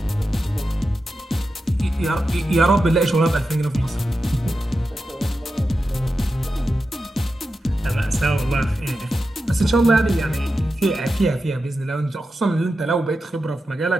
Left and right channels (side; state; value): both; normal; correlation 0.90